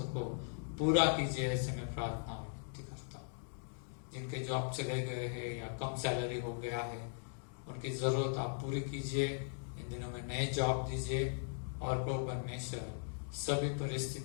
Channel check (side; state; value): right; silent; digital silence